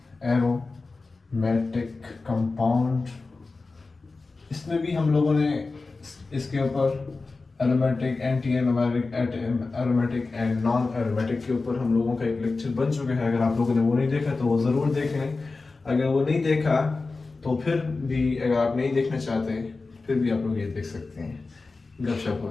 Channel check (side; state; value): right; quieter; 3.8 dB